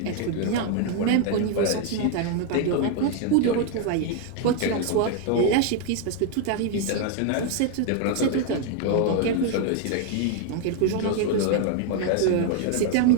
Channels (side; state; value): both; different; correlation 0.01